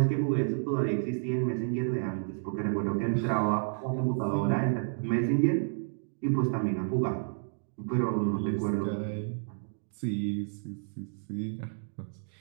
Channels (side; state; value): left; silent; digital silence